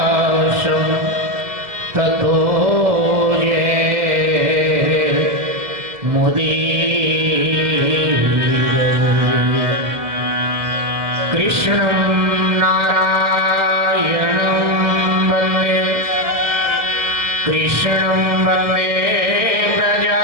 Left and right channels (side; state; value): left; late; 2.1 ms